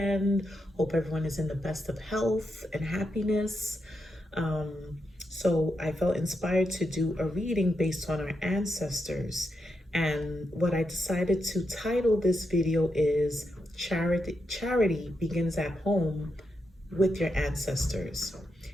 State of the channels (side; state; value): both; normal; correlation 0.84